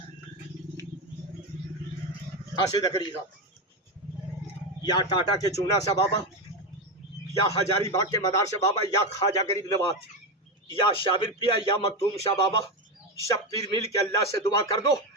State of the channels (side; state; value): both; normal; correlation 0.13